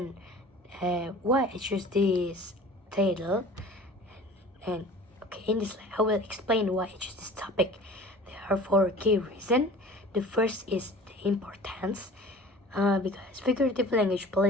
why I choose this title, and okay, in this slide I will explain why I choose this topic. There are four key reasons. The first is the importance, because figurative language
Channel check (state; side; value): normal; both; correlation 0.43